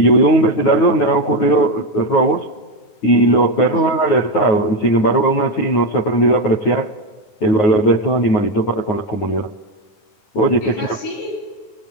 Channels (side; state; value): right; late; 9.4 ms